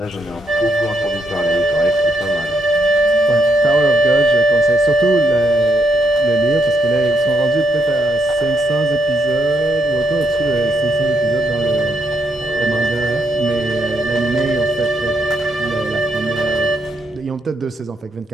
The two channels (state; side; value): normal; both; correlation 0.77